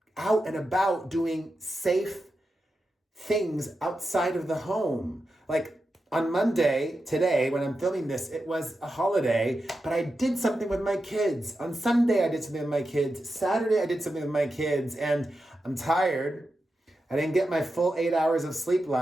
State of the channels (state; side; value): normal; both; correlation 0.89